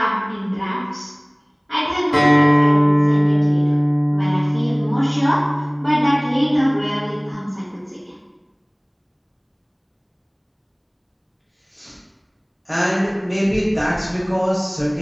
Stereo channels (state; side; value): identical; both; correlation 1.00